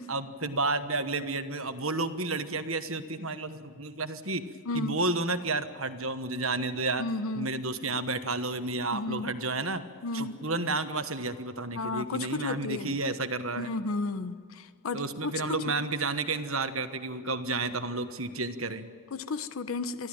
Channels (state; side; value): normal; both; correlation 0.00